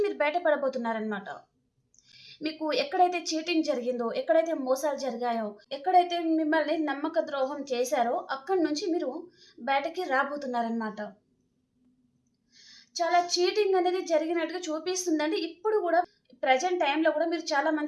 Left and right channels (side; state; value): both; identical; correlation 1.00